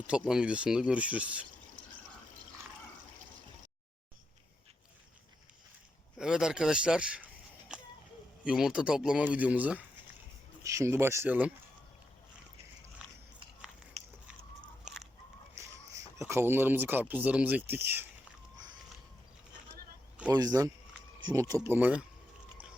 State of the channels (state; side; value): normal; both; correlation 0.84